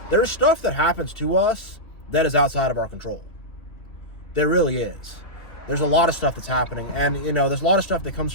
there's stuff that happens to us that is outside of our control. There really is. There's a lot of stuff that's happening, and there's a lot of stuff that comes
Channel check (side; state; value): right; late; 2.9 ms